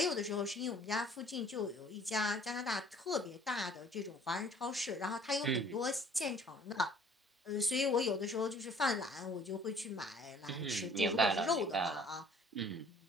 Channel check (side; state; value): both; normal; correlation 0.55